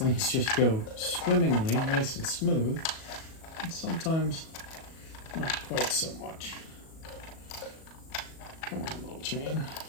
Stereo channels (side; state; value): right; late; 37 ms